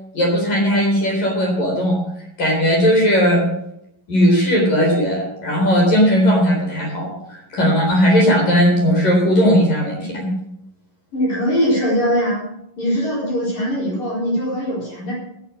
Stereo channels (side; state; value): right; late; 11 ms